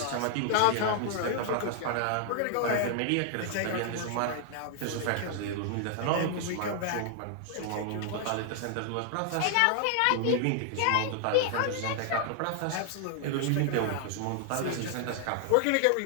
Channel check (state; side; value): different; both; correlation 0.00